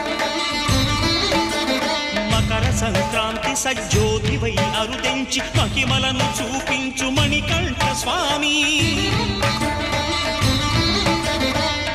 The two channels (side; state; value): both; identical; correlation 1.00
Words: మకర సంక్రాంతి సజ్జోతివై అరుదెంచి మహిమలను చూపించు మణికంఠ స్వామి